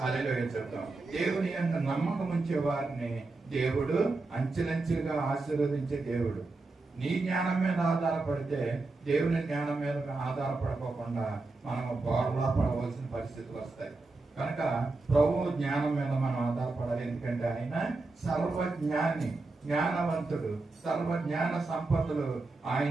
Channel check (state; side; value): quieter; left; 3.4 dB